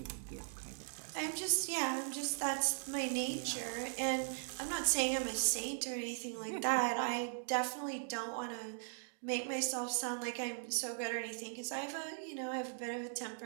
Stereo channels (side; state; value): left; silent; digital silence